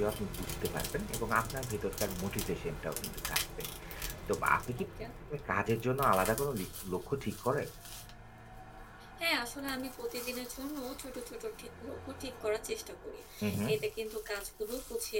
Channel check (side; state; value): both; identical; correlation 1.00